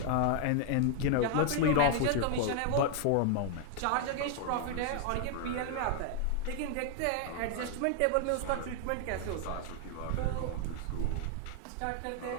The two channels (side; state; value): both; different; correlation 0.00